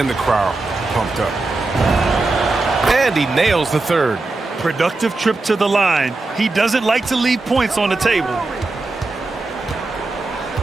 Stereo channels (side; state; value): left; quieter; 3.4 dB